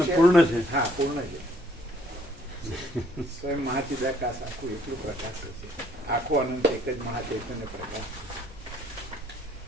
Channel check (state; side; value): normal; both; correlation 0.63